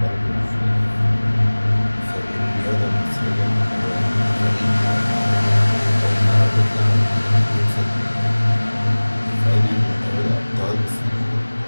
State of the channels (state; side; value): inverted; both; correlation -1.00